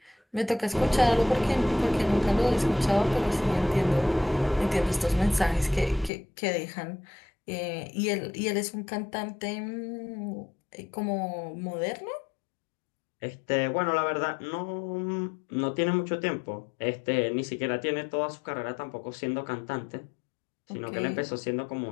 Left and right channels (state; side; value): drops out; right; at 6.1 s